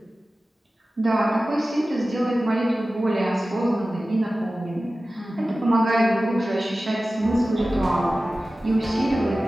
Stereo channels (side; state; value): both; normal; correlation 0.96